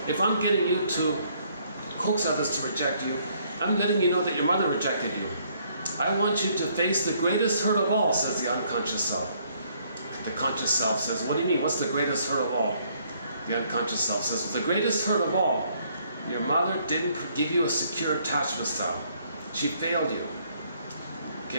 if I'm getting you to coax others to reject you, I'm letting you know that your mother rejected you. I want you to face the greatest hurt of all, says the unconscious self. The conscious self says, what do you mean? What's the greatest hurt of all? The unconscious self says, well, the greatest hurt of all, your mother didn't give you a secure attachment style. She failed you.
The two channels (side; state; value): both; inverted; correlation -0.67